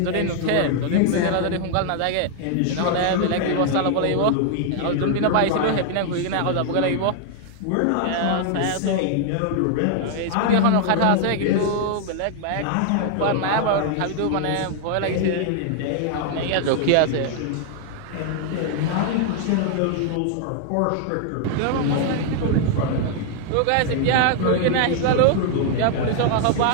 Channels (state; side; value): different; both; correlation 0.00